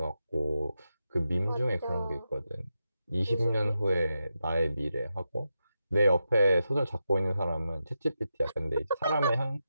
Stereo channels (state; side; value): inverted; both; correlation -0.88